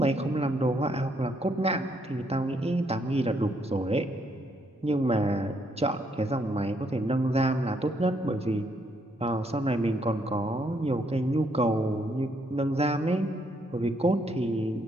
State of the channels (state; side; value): normal; both; correlation 0.73